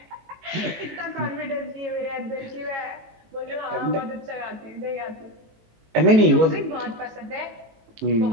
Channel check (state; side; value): late; left; 19 ms